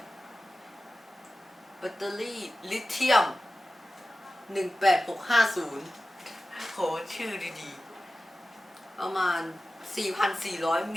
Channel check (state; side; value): normal; both; correlation 0.95